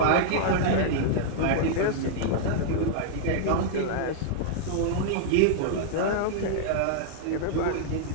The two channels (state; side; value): different; both; correlation -0.01